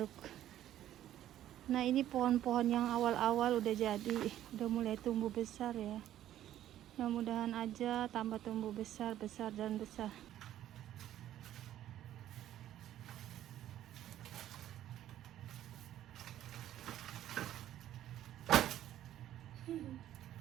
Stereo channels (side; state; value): left; quieter; 12.3 dB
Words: Nah, ini pohon-pohon yang awal-awal udah jadi, udah mulai tumbuh besar ya. Mudah-mudahan aja tambah tumbuh besar dan besar.